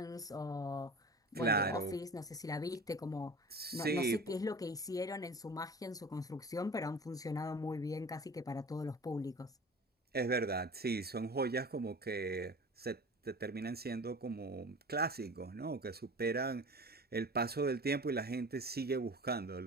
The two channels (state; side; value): normal; both; correlation 0.38